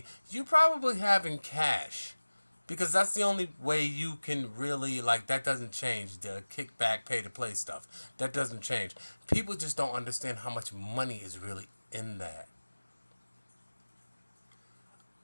you probably have in cash. Because that's the only way you can really, like, that doesn't change. The kickback, pay to play stuff. That doesn't change. People just don't understand how much money is really in that.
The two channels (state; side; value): inverted; both; correlation -1.00